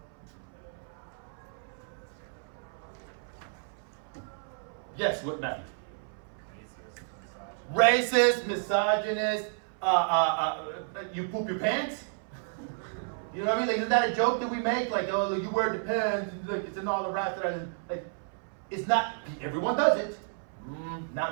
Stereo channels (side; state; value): left; silent; 57 dB below the other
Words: Yes, what Matthew? Racist, misogynist, you poop your pants? You know what I mean? Like, isn't that a joke that we make? Like, oh, you wear the pants, like, it's in all the raps that are, like, it's not, everyone does it. Not